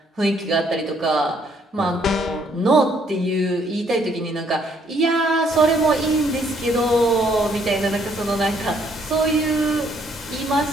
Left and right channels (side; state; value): both; normal; correlation 0.67